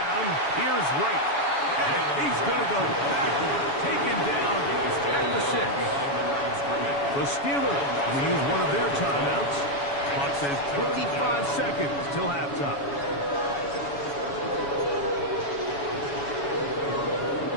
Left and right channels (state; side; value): late; right; 7.1 ms